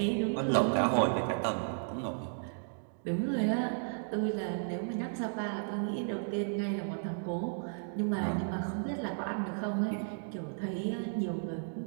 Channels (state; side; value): silent; left; digital silence